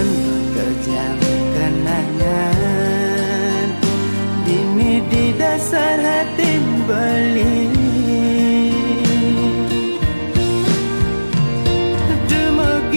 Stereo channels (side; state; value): both; inverted; correlation -1.00